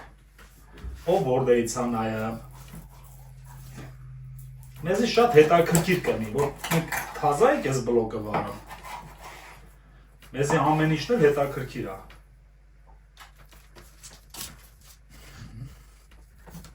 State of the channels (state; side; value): identical; both; correlation 1.00